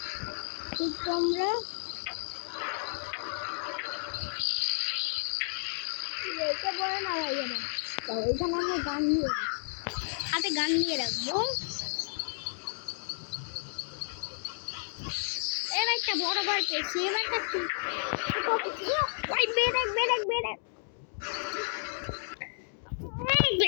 তোমরা এখানে আমরা গান নিয়ে হাতে গান নিয়ে রাখবো। এর একটা বড় বার পেয়েছি,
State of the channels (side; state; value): right; silent; digital silence